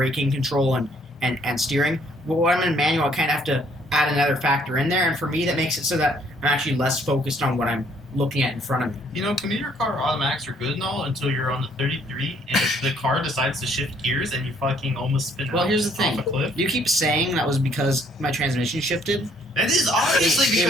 control and steering. But when I'm in manual, I kind of have to add another factor in there, and for me, that makes it so that I'm actually less focused on what I'm looking at in front of me. You know, commuter car automatics are good and all until you're on the 33 and the car decides to shift gears and you fucking almost spin Well, out here's the off thing. a cliff. You keep saying that was because my transmission shifted. That is obviously It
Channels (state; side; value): normal; both; correlation 0.64